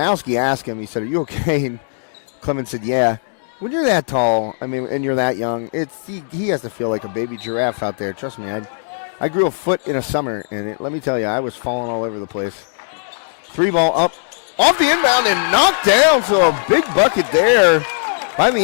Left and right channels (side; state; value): right; silent; digital silence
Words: asked him, he said, "Are you okay?" And Clemens said, "Yeah." When you're that tall, and you're that young, he has to feel like a baby giraffe out there. Trust me, I grew a foot in a summer, and let me tell you, I was falling all over the place. 3-ball up, off the inbound, and knocked down. So a big bucket there by